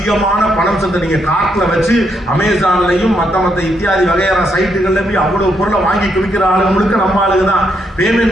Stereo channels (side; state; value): both; normal; correlation 0.77